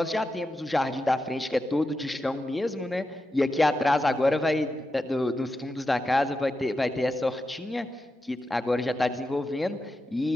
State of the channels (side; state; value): both; normal; correlation 0.89